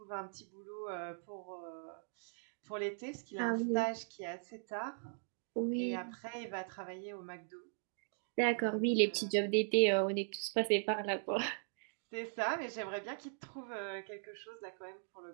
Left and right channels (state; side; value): silent; left; digital silence